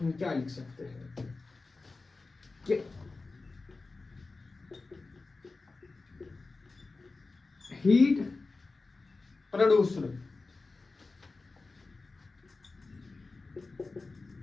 क्या लिख सकते हैं कि heat produced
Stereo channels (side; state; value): right; quieter; 3.7 dB